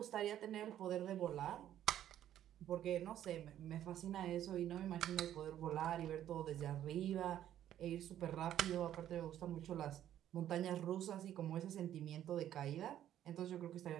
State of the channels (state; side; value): quieter; left; 11.4 dB